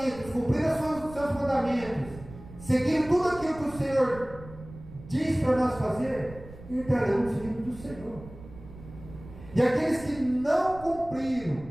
cumpriram os seus mandamentos, seguindo tudo aquilo que o Senhor diz para nós fazer, entrarão no reino do Senhor. E aqueles que não cumpriram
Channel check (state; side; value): noise; right; rumble, 17 dB below the sound